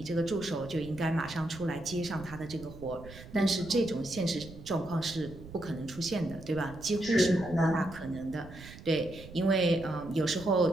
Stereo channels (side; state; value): right; noise; rumble, 15 dB below the sound